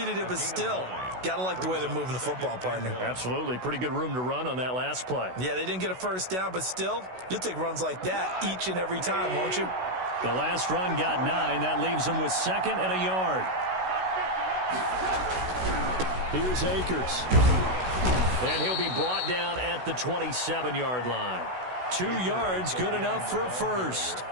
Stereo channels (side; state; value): left; late; 16 ms